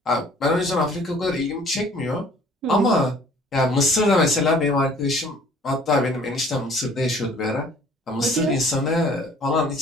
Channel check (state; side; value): normal; both; correlation 0.54